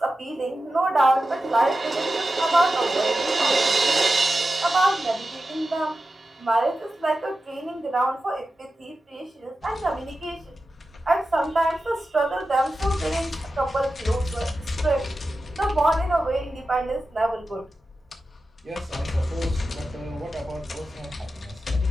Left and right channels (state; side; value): normal; both; correlation 0.93